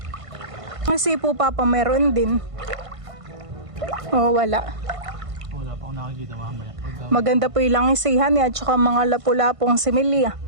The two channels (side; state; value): left; late; 1.5 ms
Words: Kasi po Papa meron din. O wala. Wala pa akong nakikita mamaya. Maganda po yung langisihan at saka mga lapu-lapong similya.